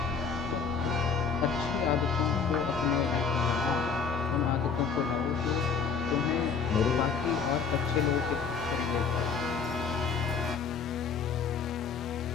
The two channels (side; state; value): right; quieter; 5.8 dB